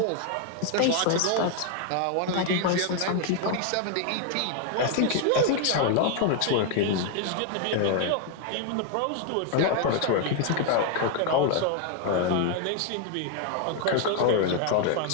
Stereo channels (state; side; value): different; both; correlation 0.01